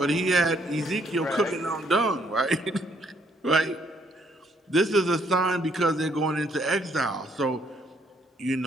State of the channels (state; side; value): normal; both; correlation 0.69